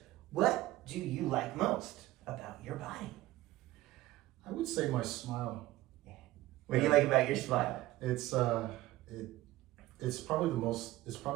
what do you like most about your body? I would say my smile. What do you like about your smile? It's probably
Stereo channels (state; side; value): quieter; left; 16.6 dB